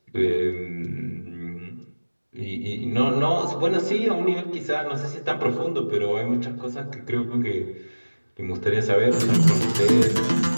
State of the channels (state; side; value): inverted; both; correlation -1.00